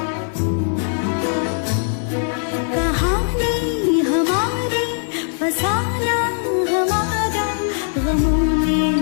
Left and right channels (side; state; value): right; silent; digital silence